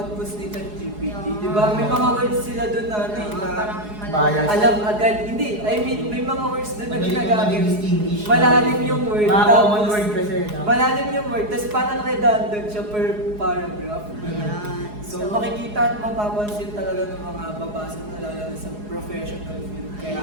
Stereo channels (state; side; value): late; left; 4.8 ms